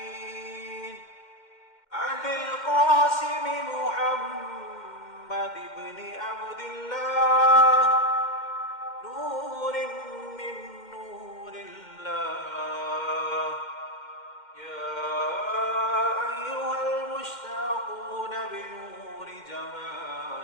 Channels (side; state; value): right; late; 2.1 ms